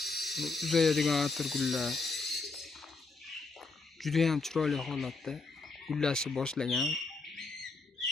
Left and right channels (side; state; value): right; quieter; 4.0 dB